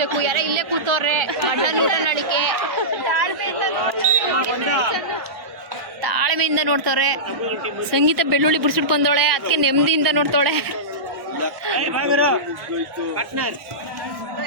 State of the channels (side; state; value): left; late; 1.1 ms